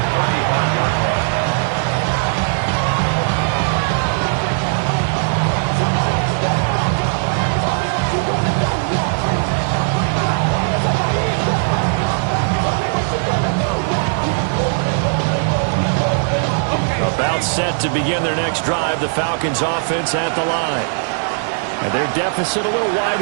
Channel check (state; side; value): silent; left; digital silence